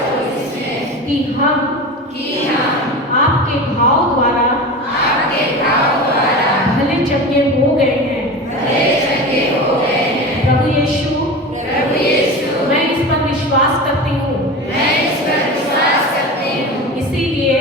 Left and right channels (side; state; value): both; normal; correlation 0.29